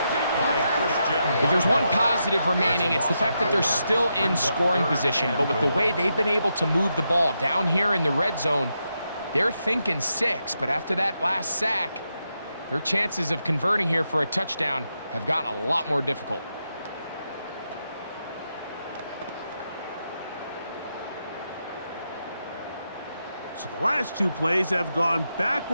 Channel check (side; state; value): both; inverted; correlation -0.84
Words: If there's one positive remaining, it's the fact that they're still in scoring position. But with the way they've been able to move the ball down here in the red zone, they're thinking 6. But after that last sack, their chances of converting here for a touchdown have gotten a lot more difficult. So the last two plays have gone